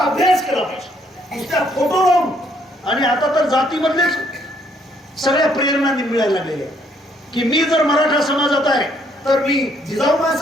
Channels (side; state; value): both; normal; correlation 0.68